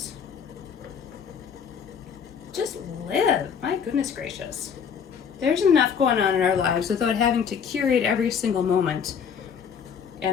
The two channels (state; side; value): quieter; right; 7.1 dB